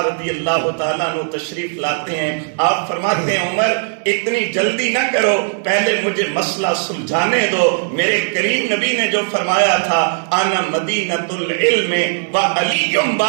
رضی اللہ تعالیٰ عنہ تشریف لاتے ہیں، آپ فرماتے ہیں عمر اتنی جلدی نہ کرو، پہلے مجھے مسئلہ سلجھانے دو۔ میرے کریم نبی نے جو فرمایا تھا انا مدینۃ العلم وعلی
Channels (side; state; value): left; silent; 68 dB below the other